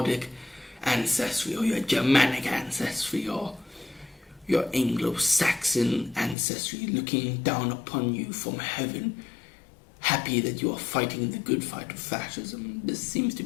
ancestry or your Germanic ancestry or your Anglo-Saxon ancestry, looking down upon you from heaven, happy that you are fighting the good fight of fascism. This seems to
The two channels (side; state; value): right; drops out; at 6.4 s